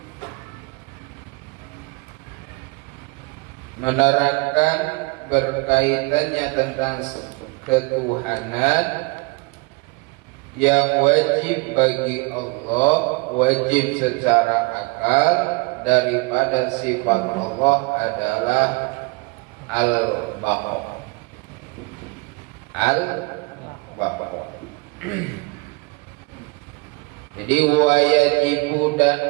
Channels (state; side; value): quieter; left; 27.1 dB